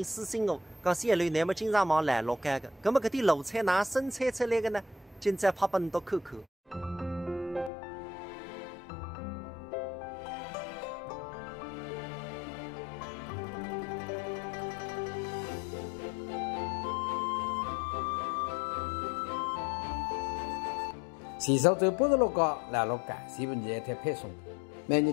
私信我，讲小刘你么经常忙来乐街的，咁么搿点卤菜哪生产出来的呢？今朝拍拨你都看看。前手走86角来乐街，全部热一台配送。每日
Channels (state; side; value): drops out; right; at 7.7 s